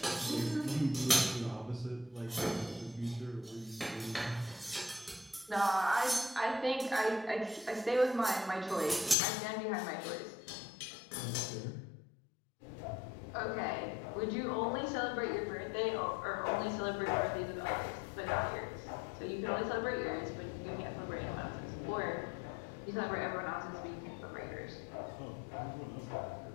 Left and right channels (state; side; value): drops out; right; at 9.2 s